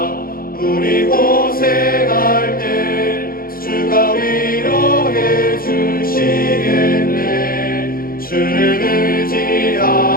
우리 고생할 때 주가 위로해 주시겠네. 주를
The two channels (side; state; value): right; late; 0.42 ms